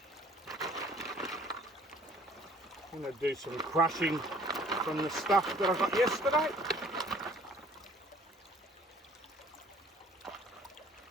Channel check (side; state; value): both; normal; correlation 0.56